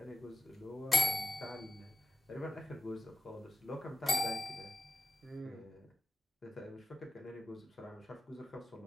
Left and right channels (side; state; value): both; normal; correlation 0.88